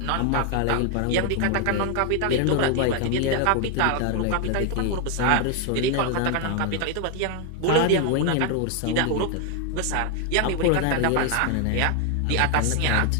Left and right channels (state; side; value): different; both; correlation 0.00